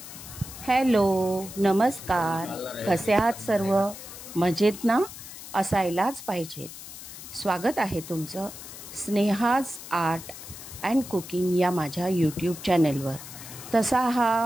हॅलो, नमस्कार, कसे आहात सर्व? मजेत ना? असायलाच पाहिजेत। स्वागत आहे तुमचं स्नेहाज आर्ट अँड कुकिंग या माझ्या यूट्यूब चॅनलवर। तसा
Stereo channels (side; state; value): left; noise; hiss, 13 dB below the sound